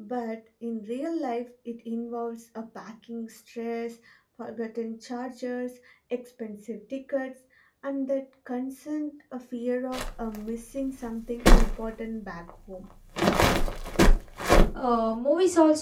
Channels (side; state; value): both; identical; correlation 1.00